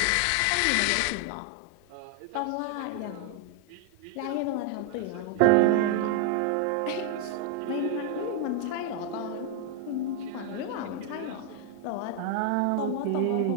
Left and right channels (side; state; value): both; different; correlation 0.00